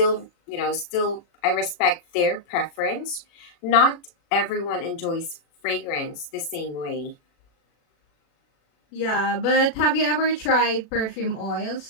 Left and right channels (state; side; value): late; right; 36 ms